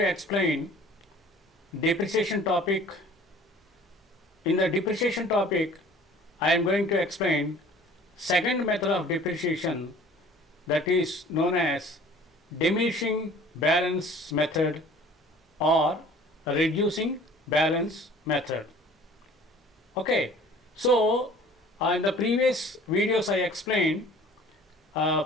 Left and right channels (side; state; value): both; normal; correlation 0.49